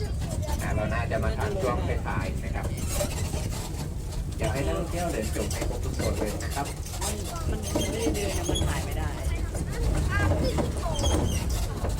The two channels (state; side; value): identical; both; correlation 1.00